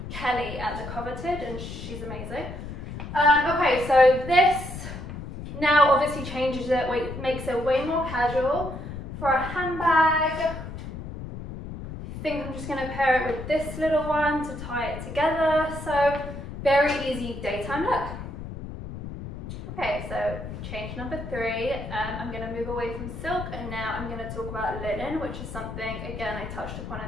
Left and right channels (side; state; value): left; noise; rumble, 9 dB below the sound